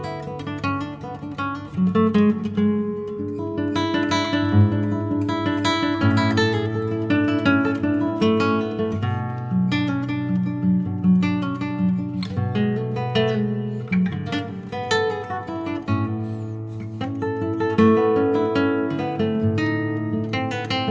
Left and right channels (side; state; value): both; identical; correlation 1.00